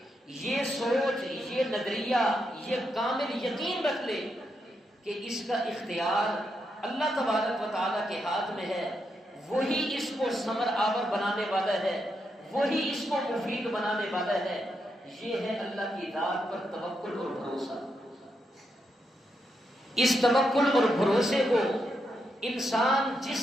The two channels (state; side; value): normal; both; correlation 0.82